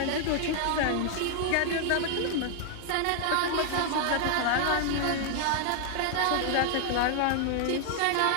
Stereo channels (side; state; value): both; different; correlation 0.00